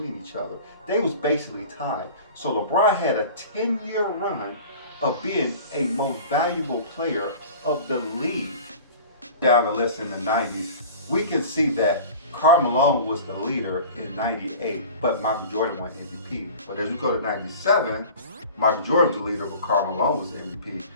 each other. They was basically tied. So LeBron had a 10-year run of being a most valuable player of the league. Down the list in the 90s, we can see that Karl Malone was the leader in 98, but Michael Jordan won MVP. But as we go to 97, Michael Jordan was the leader, but Karl Malone was the MVP.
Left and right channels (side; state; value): both; inverted; correlation -0.40